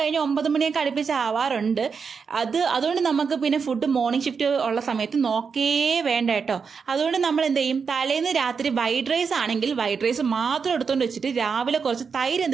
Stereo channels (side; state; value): left; quieter; 5.8 dB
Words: 9 മണിയൊക്കെ അടുപ്പിച്ച് ആവാറുണ്ട്. അതുകൊണ്ട് നമുക്ക് പിന്നെ ഫുഡ് മോർണിംഗ് ഷിഫ്റ്റ് ഉള്ള സമയത്ത് നോക്കേ വേണ്ട കേട്ടോ. അതുകൊണ്ട് നമ്മൾ എന്ത് ചെയ്യും, തലേന്ന് രാത്രി വൈറ്റ് റൈസ് ആണെങ്കിൽ വൈറ്റ് റൈസ് മാത്രം എടുത്തുകൊണ്ട് വെച്ചിട്ട് രാവിലെ കുറച്ച് തൈര്